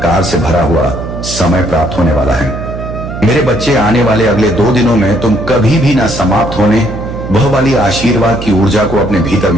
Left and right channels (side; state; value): right; noise; hum, 8 dB below the sound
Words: से भरा हुआ समय प्राप्त होने वाला है। मेरे बच्चे, आने वाले अगले 2 दिनों में तुम कभी भी ना समाप्त होने वह वाली आशीर्वाद की ऊर्जा को अपने भीतर